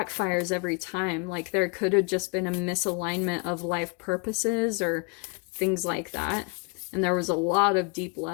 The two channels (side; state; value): right; quieter; 31.7 dB